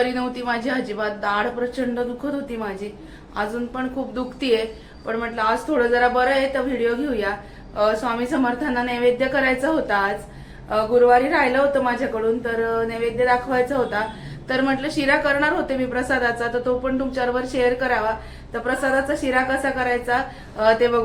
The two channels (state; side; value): identical; both; correlation 1.00